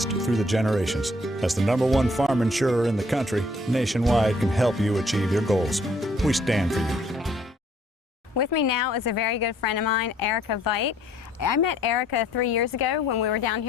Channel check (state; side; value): normal; both; correlation 0.62